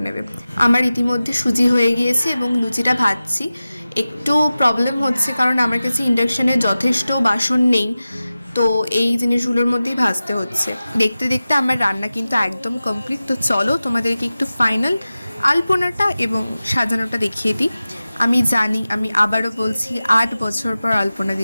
নেবে। আমার ইতিমধ্যে সুজি হয়ে গিয়েছে এবং লুচিটা ভাজছি। একটু প্রবলেম হচ্ছে, কারণ আমার কাছে ইন্ডাকশানে যথেষ্ট বাসন নেই, তো এই জিনিসগুলোর মধ্যেই ভাজতে হচ্ছে। দেখতে দেখতে আমার রান্না কিন্তু একদম কমপ্লিট। তো চলো তোমাদেরকে একটু ফাইনাল আলপনাটা এবং সাজানোটা দেখিয়ে দিই। আমি জানি, আমি আবারও বলছি, 8 বছর পর আলপনা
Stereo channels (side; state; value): both; inverted; correlation -0.95